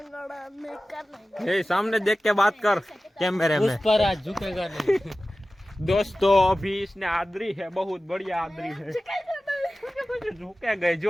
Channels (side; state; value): both; normal; correlation 0.96